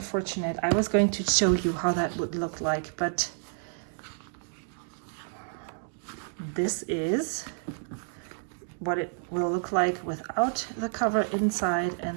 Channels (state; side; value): silent; left; 58 dB below the other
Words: I was going to show you how that would look like, but this is what it will look like without the cover inside.